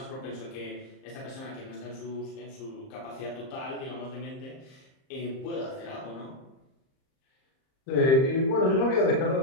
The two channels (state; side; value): late; right; 38 ms